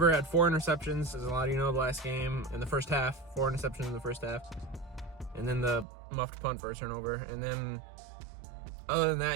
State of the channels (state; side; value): drops out; left; at 5.9 s